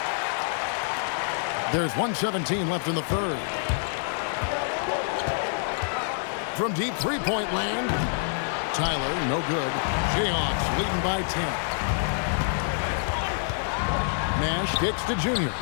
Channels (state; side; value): silent; right; 60 dB below the other